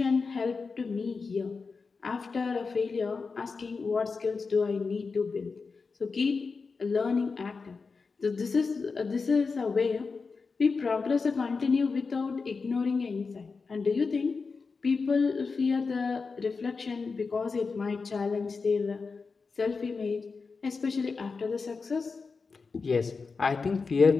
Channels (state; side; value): quieter; right; 4.6 dB